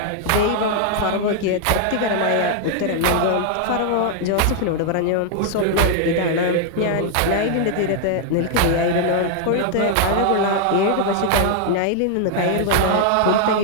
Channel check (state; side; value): different; both; correlation 0.00